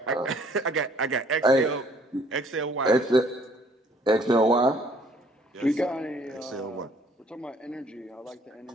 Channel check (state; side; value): normal; both; correlation 0.60